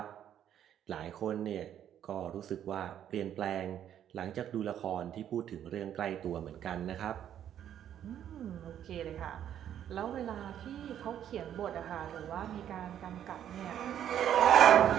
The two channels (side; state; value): left; quieter; 10.2 dB